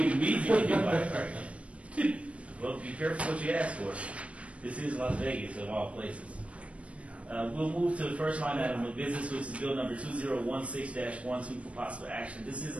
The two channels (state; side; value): late; left; 0.063 ms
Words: immediately hit by a car again. Well, be careful what you ask for. This is Las Vegas, of all places. We'll move to the first line item of business, which is bill number 2016-12 for possible action. This is